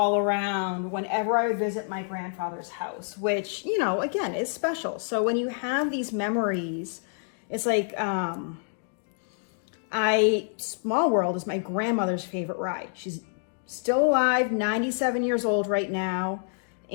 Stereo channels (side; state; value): right; silent; digital silence